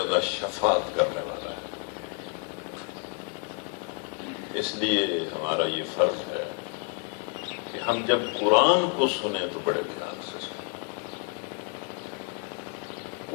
شفاعت کرنے والا ہے۔ اس لیے ہمارا یہ فرض ہے کہ ہم جب قرآن کو سنیں تو بڑے دھیان سے سنیں،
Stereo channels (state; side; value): quieter; right; 36.5 dB